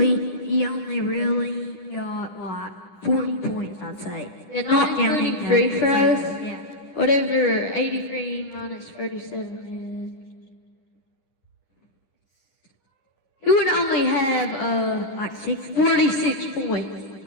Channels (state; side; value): late; right; 10 ms